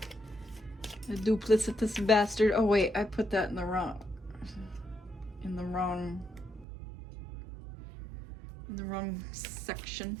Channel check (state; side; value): drops out; left; at 6.7 s